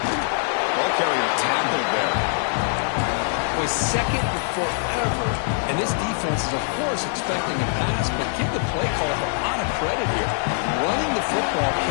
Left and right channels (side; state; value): right; silent; 63 dB below the other